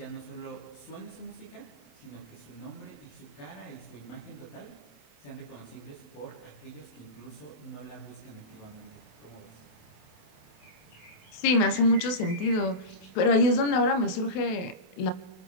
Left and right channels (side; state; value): right; late; 28 ms